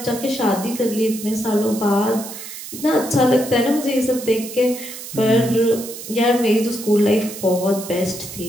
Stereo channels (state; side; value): noise; right; hiss, 11 dB below the sound